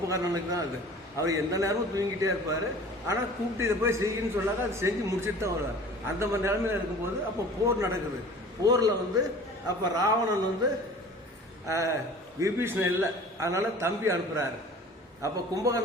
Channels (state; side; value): normal; both; correlation 0.44